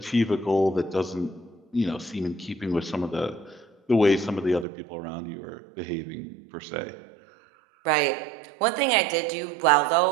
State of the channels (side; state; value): left; drops out; at 4.7 s